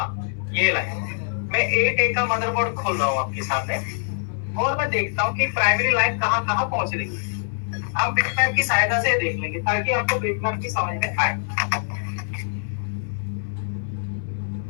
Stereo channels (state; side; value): silent; right; digital silence